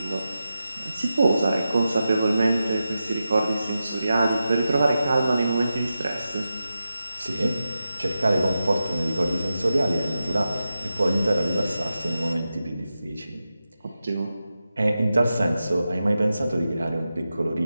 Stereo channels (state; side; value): inverted; both; correlation -0.91